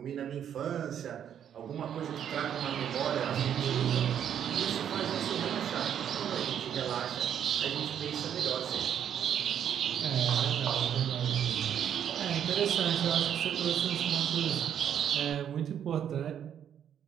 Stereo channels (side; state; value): left; quieter; 9.2 dB